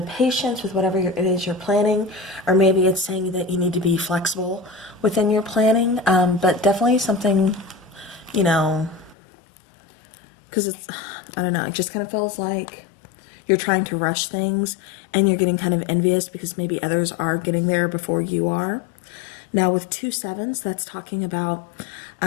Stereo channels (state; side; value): drops out; right; at 9.2 s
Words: patience with whatever it is you're planning, or maybe it's saying that you need to be flexible within your planning, but definitely something, because it's, I don't know, it just kind of feels like you're trying to rush things and you're getting kind of envious because maybe others are getting there before you are. Now with 2 sevens, that's talking about,